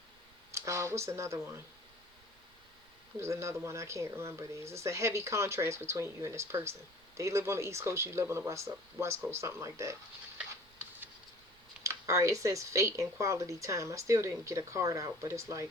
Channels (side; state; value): right; noise; rumble, 28 dB below the sound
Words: what's another one? There's another one, I can't remember these. It's a heavy contrast between you and this person. They live on the East Coast, you live on the West Coast, something like that. Alright, it says fate and quality time. I still didn't get a card out, but it's like,